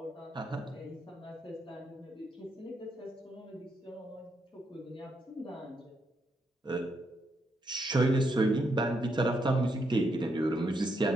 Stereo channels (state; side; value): normal; both; correlation 0.79